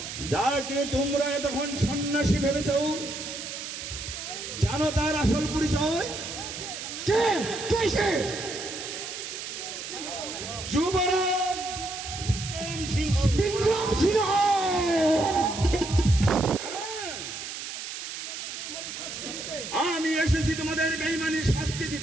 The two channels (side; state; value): right; noise; hiss, 7 dB below the sound